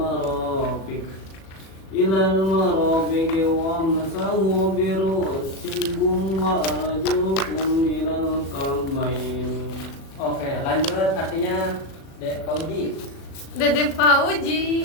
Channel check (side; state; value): right; late; 37 ms